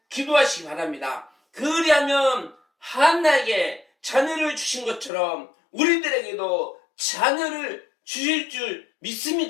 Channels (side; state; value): right; drops out; at 5.1 s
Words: 기도하시기 바랍니다. 그리하면 한나에게 자녀를 주신 것처럼 우리들에게도 자녀를 주실 줄